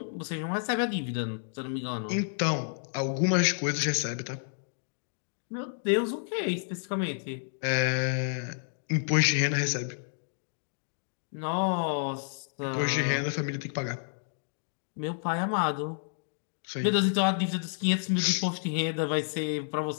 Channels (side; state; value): right; silent; digital silence